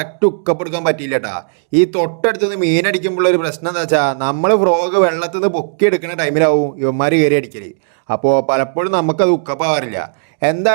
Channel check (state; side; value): silent; left; digital silence